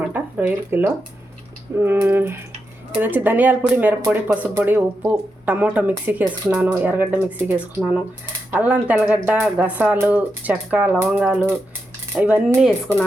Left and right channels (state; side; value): normal; both; correlation 0.86